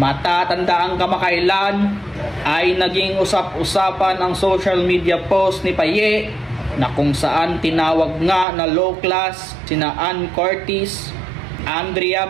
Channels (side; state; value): left; drops out; at 8.5 s